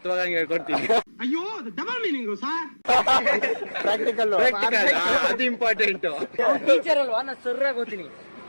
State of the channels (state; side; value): inverted; both; correlation -1.00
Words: ಹೇಳ್ಕೊಡ್ತೀನಿ. ಪ್ರಾಕ್ಟಿಕಲ್ ಅದು ಇಂಪಾರ್ಟೆಂಟ್. ಟೀಚರ್ ಅಲ್ವಾ, ನಾ ಸರ್ರಾಗಿ ಹೋಗ್ತೀನಿ.